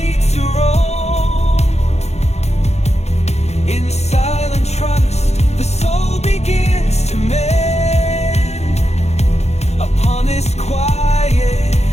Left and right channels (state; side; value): late; right; 0.31 ms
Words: to roam. In silent trust, the soul begins to mend upon this quiet,